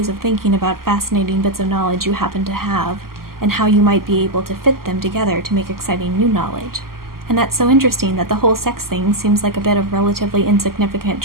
of thinking about fascinating bits of knowledge you happen to have, and how you might be able to fit them together to make exciting new knowledge. And that's so interesting that the whole sex thing seems like a bit of relatively insignificant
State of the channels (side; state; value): left; late; 0.92 ms